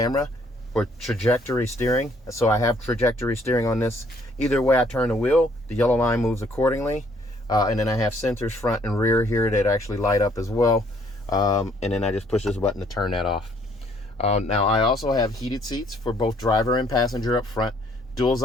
for trajectory steering. So I have trajectory steering on this. Either way I turn the wheel, the yellow line moves accordingly. And then I have sensors front and rear here that actually light up as well. And then I just push this button to turn that off. Now I also have heated seats for both driver and passenger up front. dual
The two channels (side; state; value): both; normal; correlation 0.64